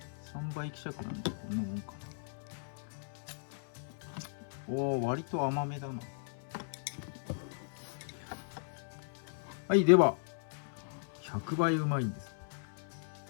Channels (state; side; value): silent; right; 53 dB below the other